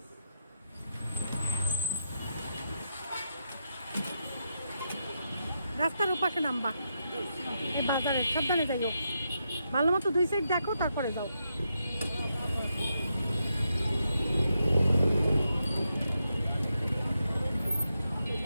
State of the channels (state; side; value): inverted; both; correlation -0.83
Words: রাস্তার ওপাশে নামবা, এই বাজারে সাবধানে যাইও, ভালো মতো 2 সাইড দেখো তারপরে যাও।